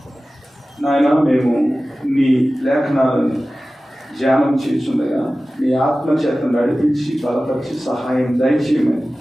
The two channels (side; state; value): both; normal; correlation 0.96